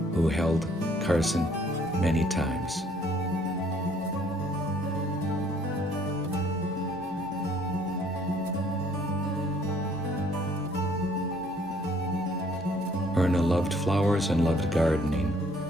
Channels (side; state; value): both; normal; correlation 0.61